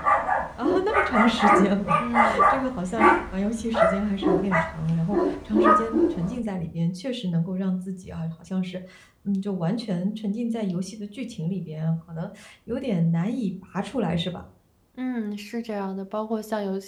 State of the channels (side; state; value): both; identical; correlation 1.00